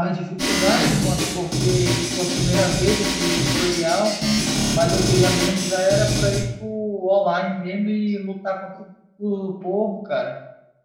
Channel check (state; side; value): identical; both; correlation 1.00